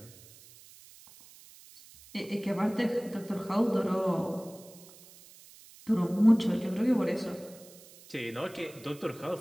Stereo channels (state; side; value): noise; right; hiss, 22 dB below the sound